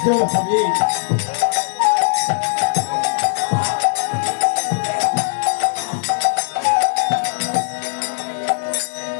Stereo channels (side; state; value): right; silent; digital silence